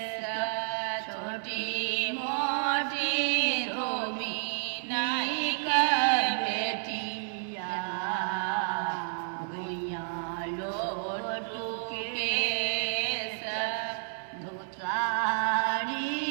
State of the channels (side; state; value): left; silent; digital silence